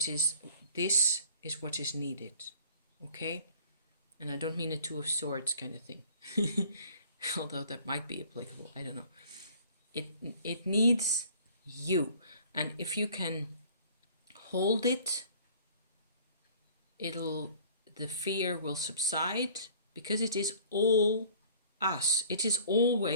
is what is needed. Okay? And I don't mean a two of swords kind of thing. Although that might be applicable. I don't know. It needs you. And if you can hold it, the fear will subside, because it is all us. It is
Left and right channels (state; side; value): inverted; both; correlation -0.51